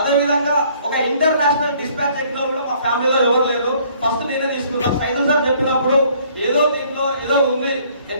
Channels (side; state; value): both; inverted; correlation -0.60